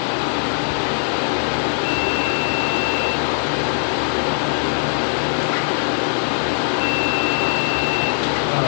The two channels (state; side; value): silent; right; digital silence